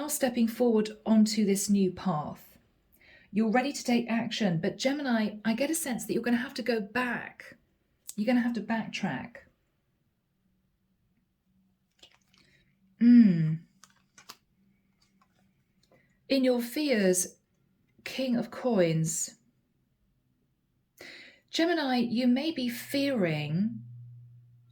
stepping forward onto this new path. You're ready to take action. But Gemini, I get a sense that you're going to have to go back. You're going to have to backtrack. In your fears, King of Coins. Gemini, you may be fearing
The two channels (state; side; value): identical; both; correlation 1.00